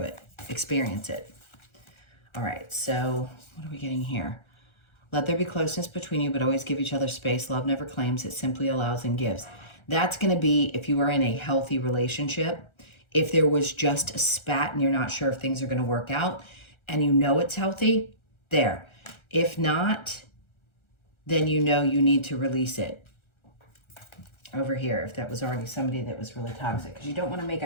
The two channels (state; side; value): late; right; 1.4 ms